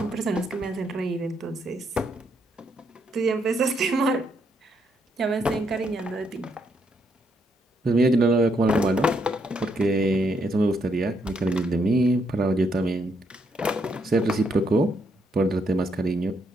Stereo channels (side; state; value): both; normal; correlation 0.75